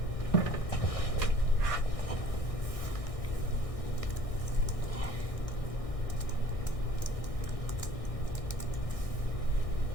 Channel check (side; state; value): right; late; 1.6 ms